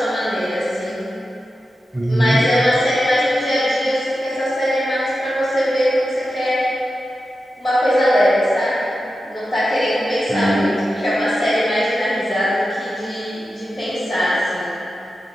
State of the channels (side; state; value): both; normal; correlation 0.91